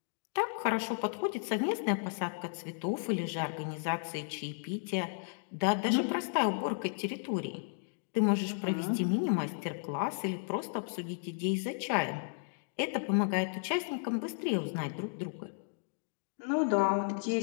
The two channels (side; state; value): right; silent; digital silence